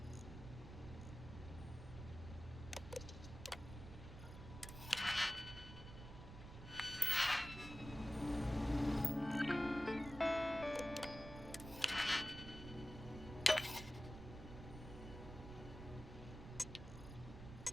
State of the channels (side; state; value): right; noise; rumble, 11 dB below the sound